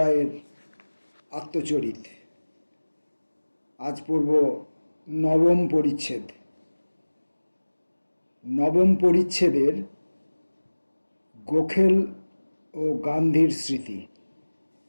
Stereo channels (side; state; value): both; inverted; correlation -1.00